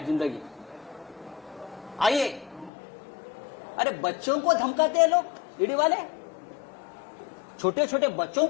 जिंदगी। आइए, अरे बच्चों को धमकाते हैं लोग, ईडी वाले छोटे छोटे बच्चों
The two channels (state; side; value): drops out; right; at 2.7 s